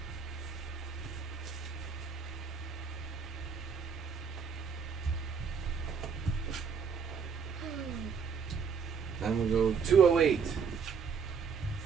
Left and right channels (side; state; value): left; quieter; 6.1 dB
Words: Then we'll go 208.